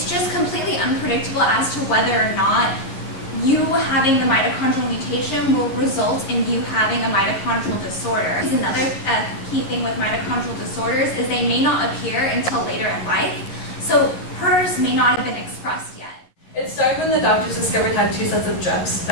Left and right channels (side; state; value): right; late; 11 ms